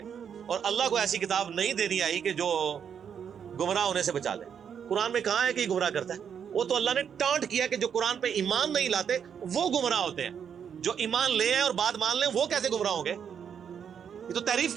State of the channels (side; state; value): left; quieter; 7.7 dB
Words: اور اللہ کو ایسی کتاب نہیں دینی آئی کہ جو گمراہ ہونے سے بچا لے. قرآن میں کہاں ہے کہ یہ گمراہ کرتا ہے؟ وہ تو اللہ نے ٹانٹ کیا کہ جو قرآن پہ ایمان نہیں لاتے وہ گمراہ ہوتے ہیں. جو ایمان لے ہیں اور بات مان لیں وہ کیسے گمراہ ہوں گے؟ یہ تو تعریف